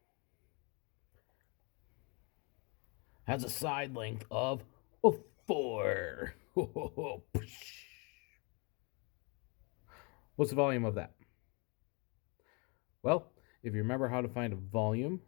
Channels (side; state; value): right; quieter; 32.3 dB